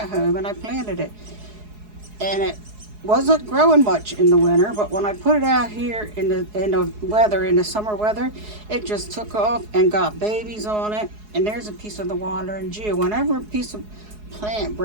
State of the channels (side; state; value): left; late; 4.7 ms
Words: home and I planted it. And it wasn't growing much in the winter, but when I put it out here in the summer weather, it just took off and got babies on it. And there's a piece of the wandering Jew. Whenever a piece of plant